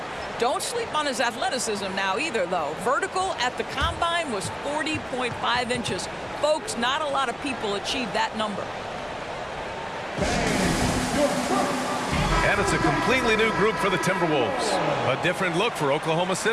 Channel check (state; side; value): identical; both; correlation 1.00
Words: Don't sleep on his athleticism now either, though. Vertical at the combine was 40.5 inches. Folks, not a lot of people achieve that number. And it's a completely new group for the Timberwolves. A different look for Oklahoma